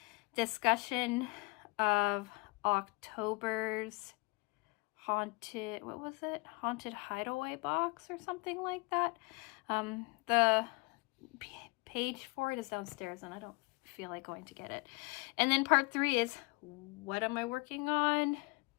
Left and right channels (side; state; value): right; quieter; 27.5 dB